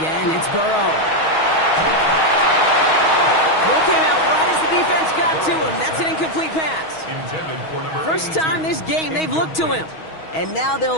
it's Burrow. Throw came out right as the defense got to him. That's an incomplete pass. First time this game they've looked to him. And now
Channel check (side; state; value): right; late; 6.3 ms